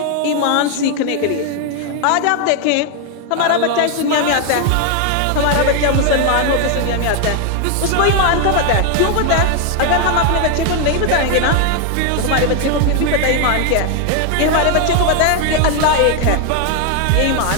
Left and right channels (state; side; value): different; both; correlation 0.01